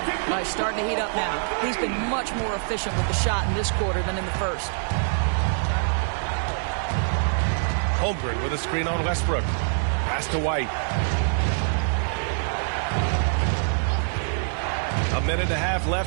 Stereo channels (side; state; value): left; silent; digital silence